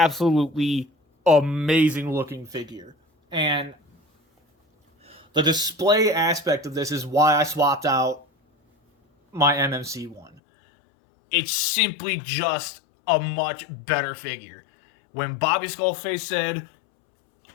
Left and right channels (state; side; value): drops out; right; at 10.4 s